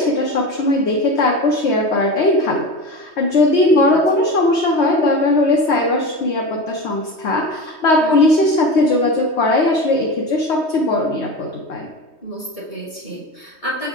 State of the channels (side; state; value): right; late; 3.2 ms